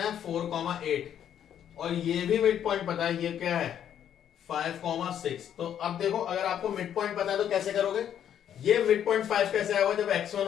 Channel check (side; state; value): right; quieter; 9.7 dB